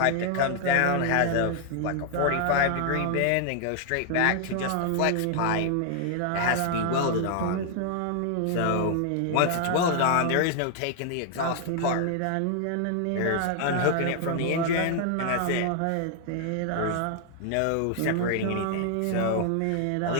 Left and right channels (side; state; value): both; different; correlation 0.00